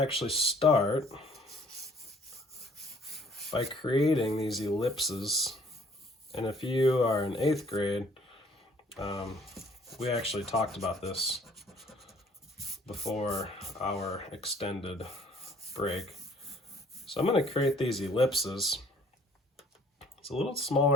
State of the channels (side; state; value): both; normal; correlation 0.58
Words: start by creating these ellipses. And if you are in 8th grade, we actually talked about this before our extended break. So I'm going to create these ellipses. It's a little